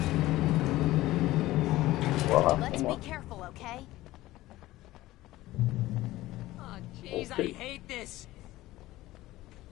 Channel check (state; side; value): quieter; right; 17.0 dB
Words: Let's be careful, okay? Oh, jeez, Okay. I hate this.